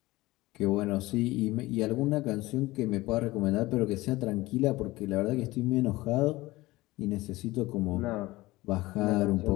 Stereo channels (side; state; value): right; quieter; 19.4 dB